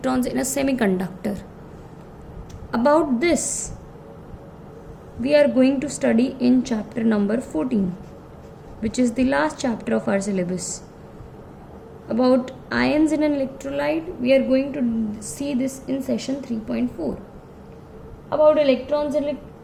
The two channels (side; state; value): both; identical; correlation 1.00